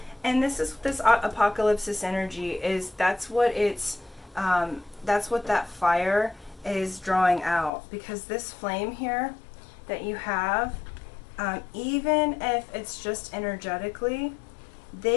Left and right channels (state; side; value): drops out; right; at 7.7 s